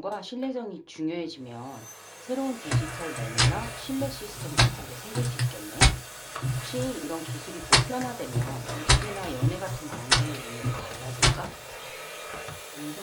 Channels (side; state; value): both; identical; correlation 1.00